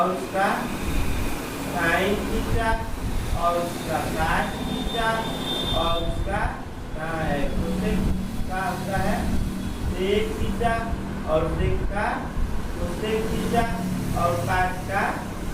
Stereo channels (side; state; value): both; identical; correlation 1.00